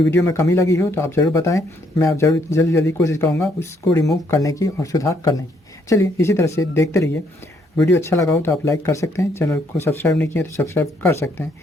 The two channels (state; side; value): normal; both; correlation 0.70